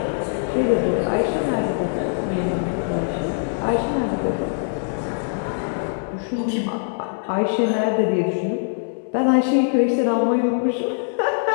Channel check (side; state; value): right; silent; 59 dB below the other